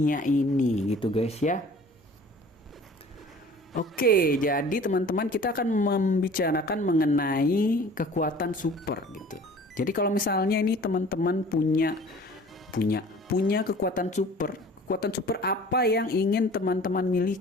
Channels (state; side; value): normal; both; correlation 0.47